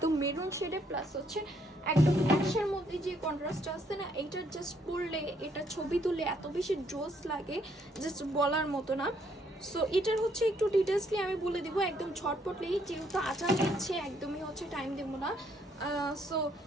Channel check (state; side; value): normal; both; correlation 0.70